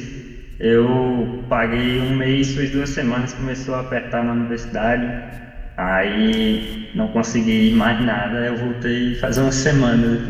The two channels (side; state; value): both; identical; correlation 1.00